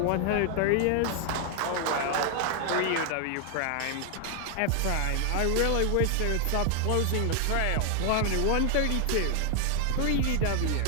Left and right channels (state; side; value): different; both; correlation 0.00